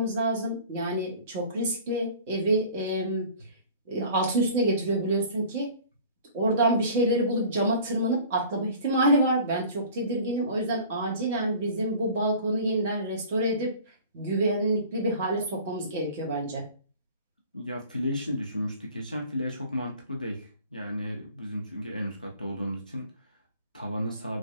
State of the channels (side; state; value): both; inverted; correlation -0.45